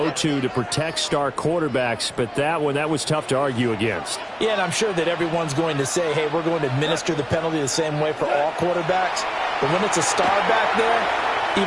to protect star quarterbacks, but that was tough to argue against. Yeah, and I'm sure that everyone's going to say, hey, we're going to administer the penalty the same way for all quarterbacks. But when it's a star back there,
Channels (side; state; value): both; identical; correlation 1.00